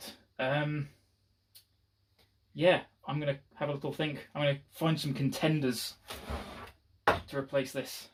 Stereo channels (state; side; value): identical; both; correlation 1.00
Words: Yeah, I'm going to have a little think. I'm going to find some contenders to replace this.